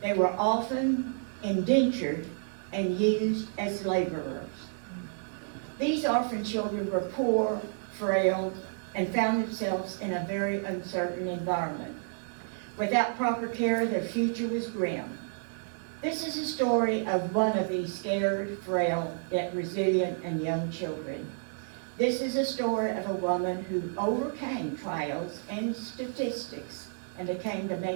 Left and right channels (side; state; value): left; silent; 58 dB below the other